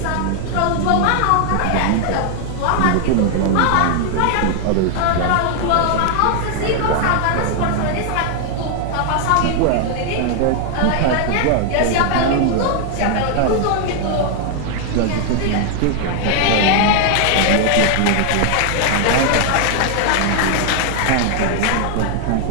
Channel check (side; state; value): both; different; correlation 0.00